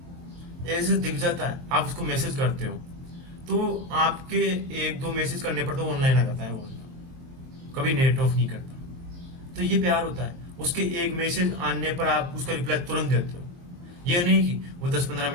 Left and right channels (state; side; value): late; left; 22 ms